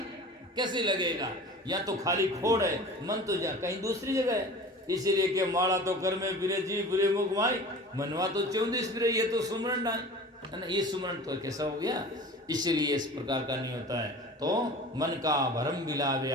कैसे लगेगा। या तो खाली खोड़ है, मन तो जा कहीं दूसरी जगह है। इसीलिए कि माला तो कर में फिरे जी फिरे मुख माई, मनवा तो 34 फिरे, ये तो सुमरण ना है ना, ये सुमरण तो कैसा हो गया। इसीलिए इस प्रकार का नहीं होता है। तो मन का भरम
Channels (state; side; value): normal; both; correlation 0.39